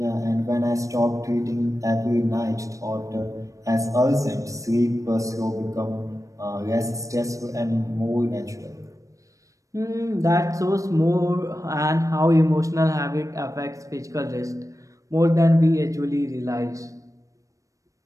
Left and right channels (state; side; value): late; left; 0.16 ms